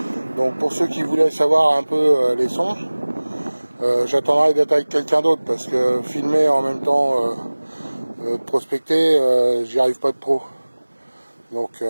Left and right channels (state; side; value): inverted; both; correlation -1.00